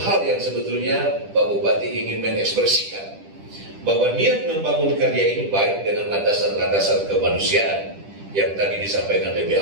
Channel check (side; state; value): left; late; 10 ms